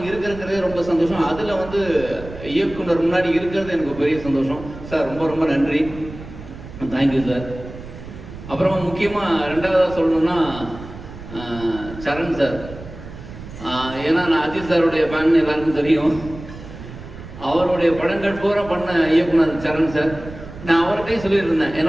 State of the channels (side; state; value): right; noise; rumble, 14 dB below the sound